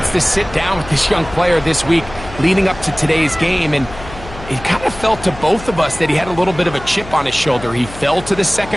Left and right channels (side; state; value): left; noise; hum, 15 dB below the sound